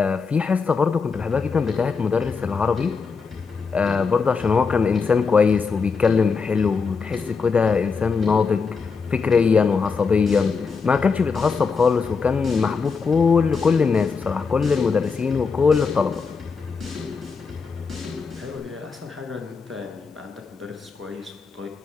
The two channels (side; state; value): right; quieter; 5.2 dB